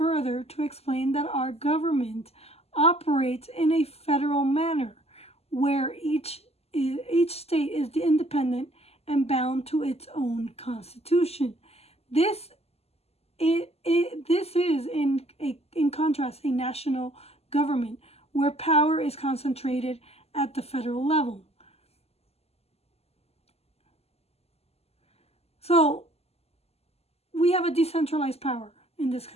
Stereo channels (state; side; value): late; right; 0.29 ms